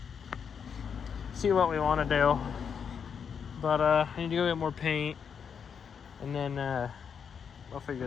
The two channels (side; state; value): right; quieter; 7.0 dB